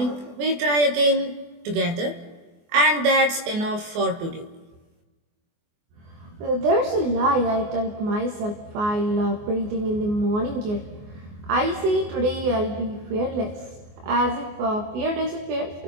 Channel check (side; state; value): left; late; 24 ms